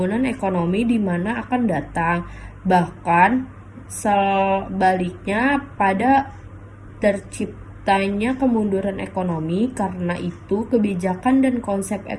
ekonomi di mana akan datang. Bahkan sebaliknya, pada terciptanya kemunduran ekonomi. Karena itu, kebijakan dan konsep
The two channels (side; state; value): both; identical; correlation 1.00